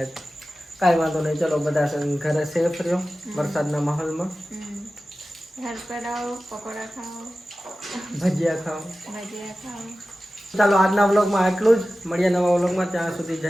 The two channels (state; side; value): normal; both; correlation 0.95